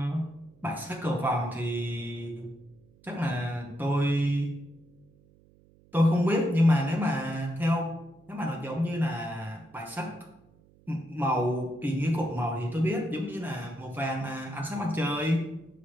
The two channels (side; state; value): right; noise; hum, 29 dB below the sound